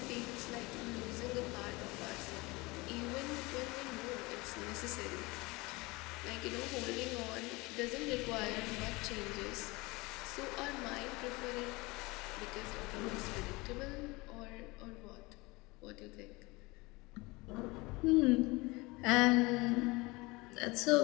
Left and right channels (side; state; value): right; quieter; 23.7 dB